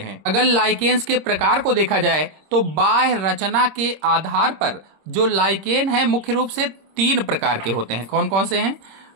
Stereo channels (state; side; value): late; left; 26 ms